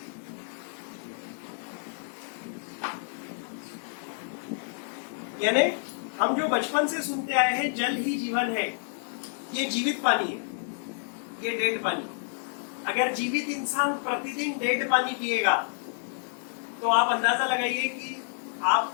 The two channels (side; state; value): right; silent; digital silence